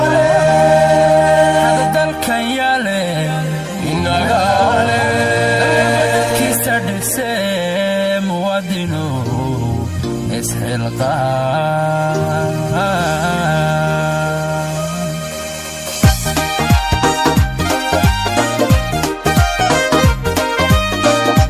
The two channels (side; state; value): both; identical; correlation 1.00